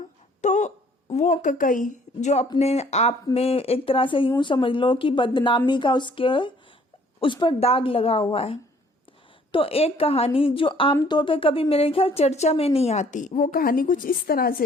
तो वो ककई जो अपने आप में एक तरह से यूं समझ लो कि बदनामी का उस पर दाग लगा हुआ है। तो एक कहानी जो आमतौर पे कभी मेरे ख्याल चर्चा में नहीं आती, वो कहानी कुछ इस तरह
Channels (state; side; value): normal; both; correlation 0.59